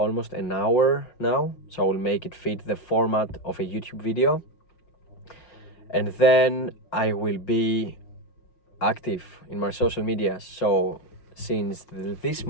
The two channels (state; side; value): late; right; 5.6 ms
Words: an hour now, so I will make it fit the format of a YouTube video. And then I will be active in my social media. So since this